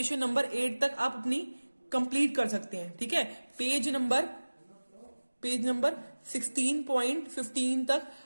8 तक आप अपनी कंप्लीट कर सकते हैं। ठीक है, पेज नंबर 16.15 तक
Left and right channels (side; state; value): both; inverted; correlation -1.00